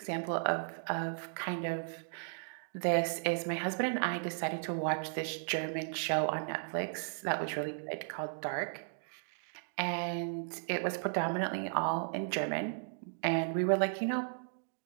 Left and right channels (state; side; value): silent; left; digital silence